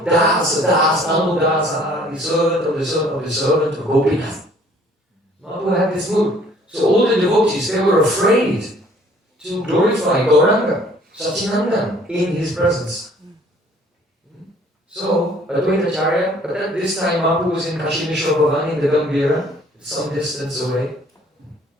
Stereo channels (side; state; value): both; normal; correlation 0.57